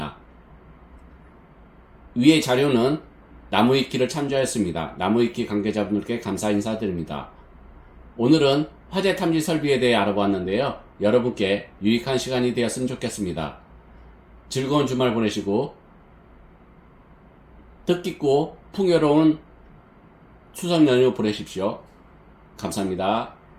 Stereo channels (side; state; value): both; identical; correlation 1.00